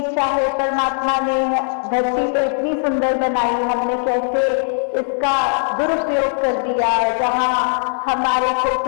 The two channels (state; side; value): silent; right; 66 dB below the other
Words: चाहे परमात्मा ने धरती तो इतनी सुंदर बनाई, हमने कैसे इसका दुरुपयोग कर दिया, जहां हमारे को